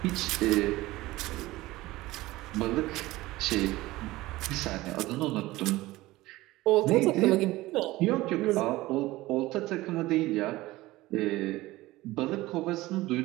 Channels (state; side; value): quieter; left; 18.4 dB